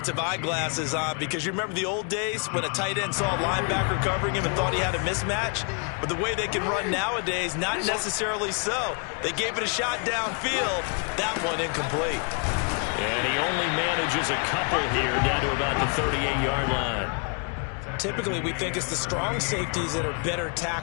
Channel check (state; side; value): quieter; right; 38.1 dB